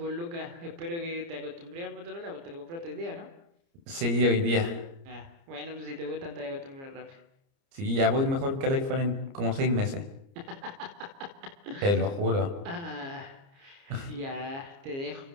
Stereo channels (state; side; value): late; left; 29 ms